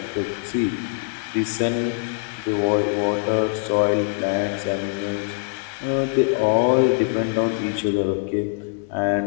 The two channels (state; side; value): silent; right; 63 dB below the other